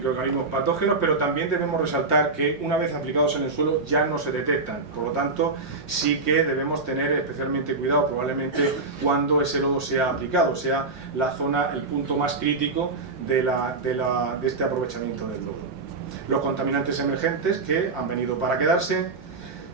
patógenos, pero también debemos resaltar que una vez aplicados en el suelo ya no se detectan. Por lo tanto, sí que debemos tener especialmente cuidado probablemente cuando ese lodo sea aplicado, sea la zona, el punto más crítico de este aprovechamiento del lodo. Los contaminantes emergentes, que han venido para quedarse,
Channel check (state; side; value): quieter; left; 3.7 dB